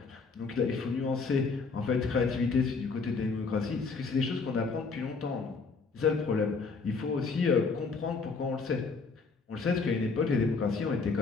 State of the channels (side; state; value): right; quieter; 4.5 dB